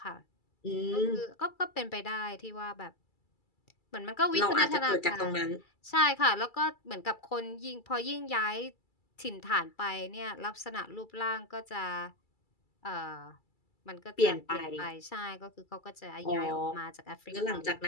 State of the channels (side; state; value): right; late; 2.3 ms